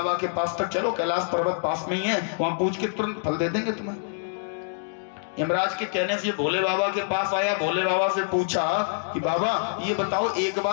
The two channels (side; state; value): right; silent; digital silence